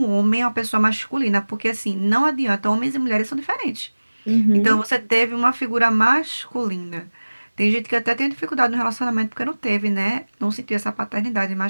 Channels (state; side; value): inverted; both; correlation -1.00